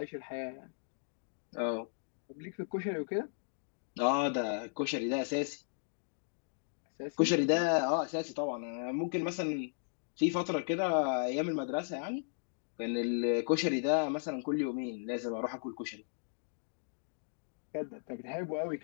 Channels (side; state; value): right; silent; digital silence